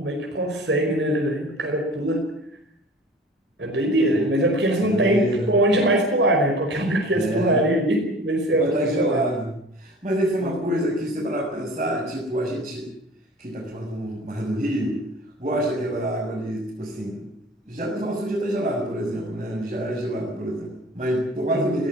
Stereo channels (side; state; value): both; normal; correlation 0.43